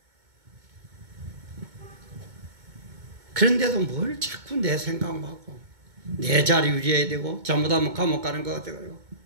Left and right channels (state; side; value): late; left; 2.2 ms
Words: 그런데도 뭘 자꾸 내 생각만 하고 내 자리 유지해야 되고 잘못하면 감옥 가는 것 같아요.